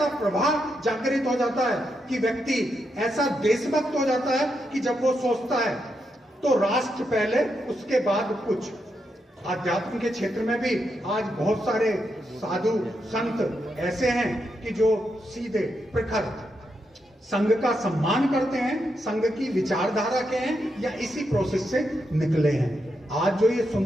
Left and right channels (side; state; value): both; normal; correlation 0.83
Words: प्रभाव जागृत हो जाता है कि व्यक्ति ऐसा देशभक्त हो जाता है कि जब वो सोचता है तो राष्ट्र पहले, उसके बाद कुछ। आध्यात्म के क्षेत्र में भी आज बहुत सारे साधु संत ऐसे हैं कि जो सीधे प्रखर संघ का सम्मान करते हैं, संघ की विचारधारा के हैं या इसी प्रोसेस से निकले हैं। आज जो ये